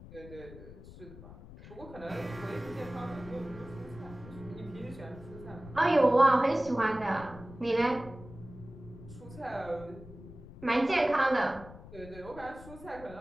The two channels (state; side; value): noise; left; rumble, 16 dB below the sound